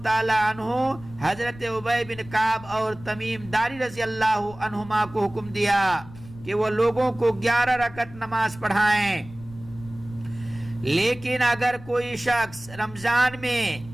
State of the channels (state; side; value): noise; left; rumble, 18 dB below the sound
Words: تعالیٰ عنہ حضرت ابی بن کعب اور تمیم داری رضی اللہ عنہما کو حکم دیا کہ وہ لوگوں کو 11 رکعت نماز پڑھائیں. لیکن اگر کوئی شخص رمضان میں